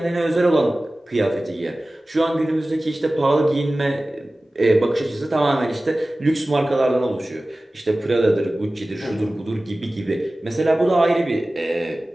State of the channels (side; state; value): both; normal; correlation 0.97